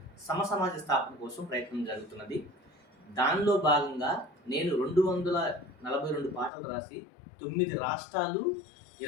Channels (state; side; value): drops out; right; at 6.5 s